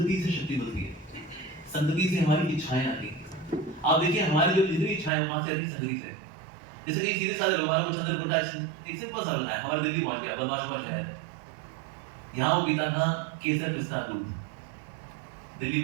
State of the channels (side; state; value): left; drops out; at 5.1 s